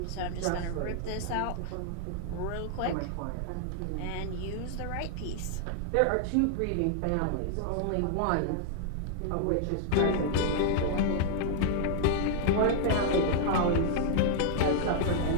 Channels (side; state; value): both; different; correlation -0.01